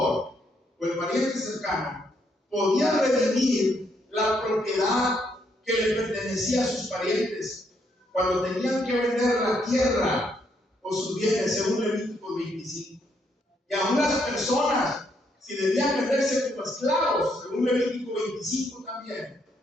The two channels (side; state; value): both; normal; correlation 0.74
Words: o el pariente cercano podía redimir la propiedad que le pertenecía a sus parientes cuando tenían que vender la tierra o sus bienes, según Levítico 25. Y a unas personas, si debían venderse como esclavos, según Levítico 25 también,